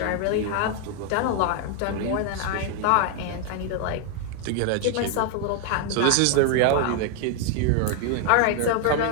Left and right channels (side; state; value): both; different; correlation 0.00